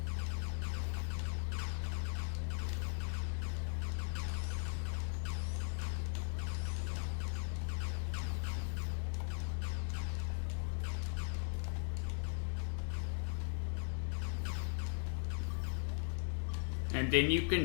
And then you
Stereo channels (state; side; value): silent; right; digital silence